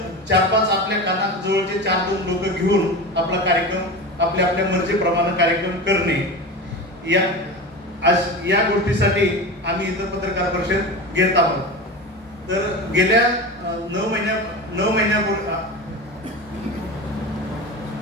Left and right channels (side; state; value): both; normal; correlation 0.27